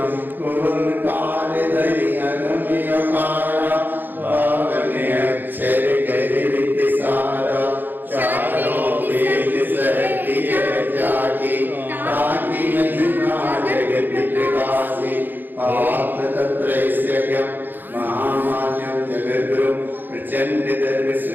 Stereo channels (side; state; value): left; late; 0.090 ms